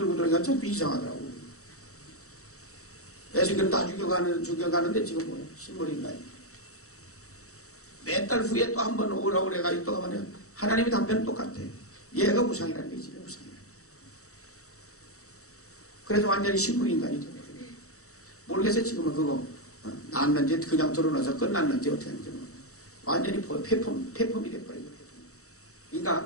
돌아다니니까 참 이상하더라고. 애새끼를 다 죽여가는데 지금 뭐야? 식물인가요? 몇 달 후에 또 한 번 오라고 그래가지고 또 하면 하나님의 답변은 똑같아. 얘가 우상이라는 게 지금 우상이야. 그래서 완전히 식물인간이 되거든. 모르겠어요. 지금은 그거 낳았는지 그냥 들어놔서 끝났는지 어떻게 하는지 완전히 폐품이 돼버리고.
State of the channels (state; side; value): late; right; 0.65 ms